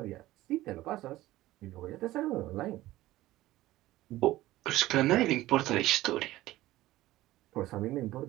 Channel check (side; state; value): left; quieter; 16.4 dB